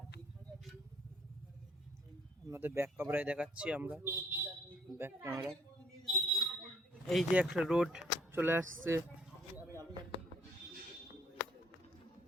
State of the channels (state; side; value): normal; both; correlation 0.63